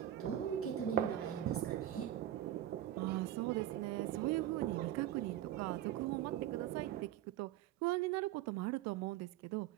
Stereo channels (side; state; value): left; quieter; 12.6 dB